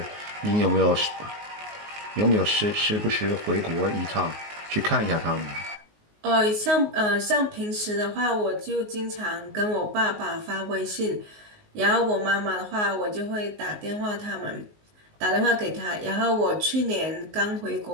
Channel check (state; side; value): late; left; 19 ms